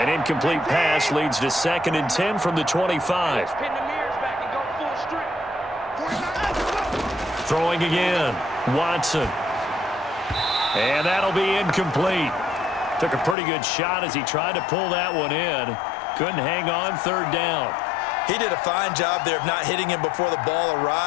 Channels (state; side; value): drops out; right; at 13.4 s